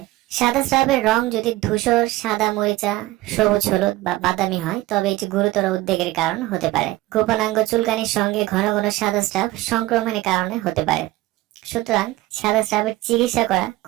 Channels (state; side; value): quieter; left; 17.9 dB